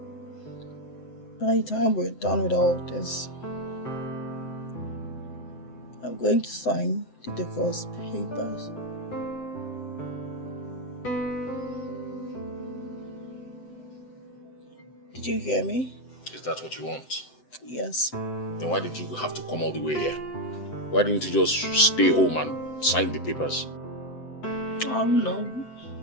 By the time we're done with all this, I'm going to sign the divorce papers. Did you hear me? Is that what you want? Yes. Then why did you have to come all the way here? Why didn't you just stay home and sign the papers? Oh no.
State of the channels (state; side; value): late; right; 7.8 ms